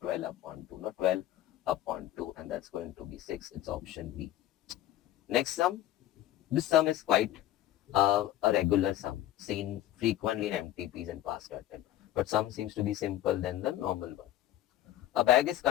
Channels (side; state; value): right; quieter; 13.2 dB